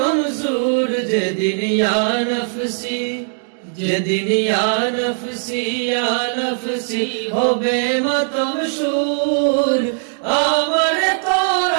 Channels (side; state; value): left; silent; digital silence